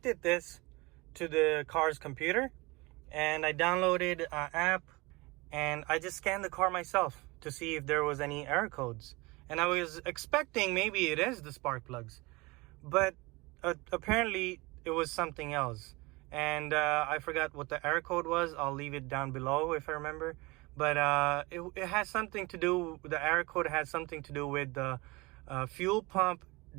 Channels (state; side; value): quieter; left; 24.1 dB